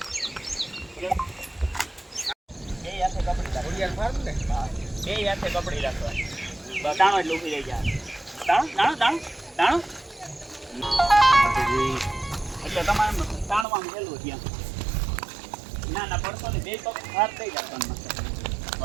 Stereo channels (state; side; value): drops out; left; at 13.7 s